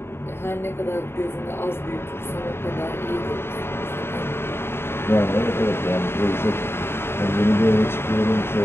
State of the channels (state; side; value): late; right; 0.11 ms